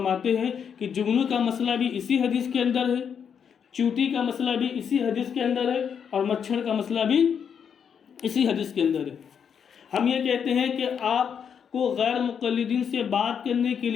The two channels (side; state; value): right; quieter; 7.4 dB